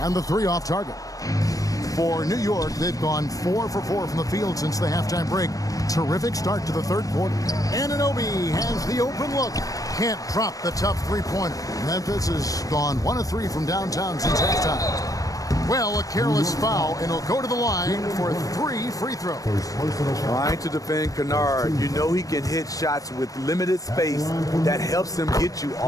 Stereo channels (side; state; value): right; late; 0.17 ms